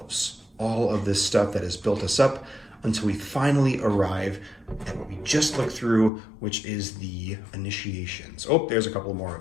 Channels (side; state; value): right; drops out; at 6.1 s